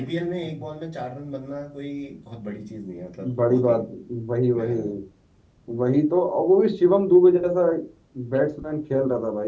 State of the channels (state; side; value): identical; both; correlation 1.00